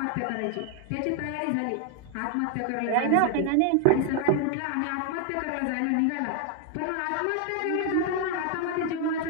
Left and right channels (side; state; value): both; different; correlation 0.00